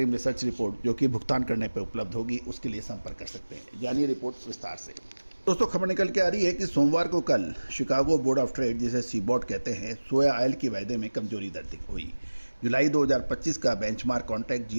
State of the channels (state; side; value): inverted; both; correlation -1.00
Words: रिसर्च रिपोर्ट जो कि भुगतान करने पर उपलब्ध होगी, उसके लिए संपर्क कर सकते हैं। जानिए रिपोर्ट विस्तार से। दोस्तों खबर निकल के आ रही है कि सोमवार को कल शिकागो बोर्ड ऑफ ट्रेड, जिसे सीबॉट कहते हैं, सोया ऑयल के वायदे में कमजोरी दर्ज हुई। जुलाई 2025 का बेंचमार्क कॉन्ट्रैक्ट